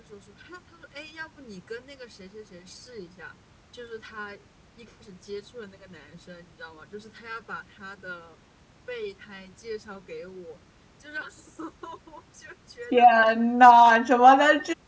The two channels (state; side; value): identical; both; correlation 1.00